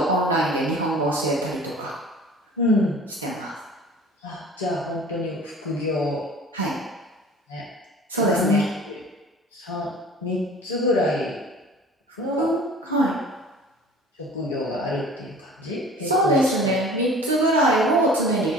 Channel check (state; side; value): normal; both; correlation 0.45